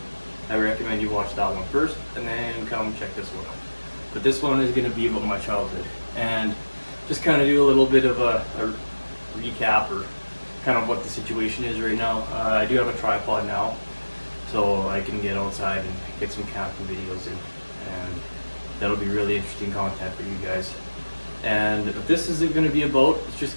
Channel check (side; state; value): both; inverted; correlation -1.00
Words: I recommend you watch that one first, and then come check this one out. But this one is going to be about my childhood, and just kind of do a little bit of a recap or kind of what the situation is right now. I do have a tripod now, so I can get outside and get some camping videos in, and that'll be really interesting content for you guys. And what this isn't going to be about, it's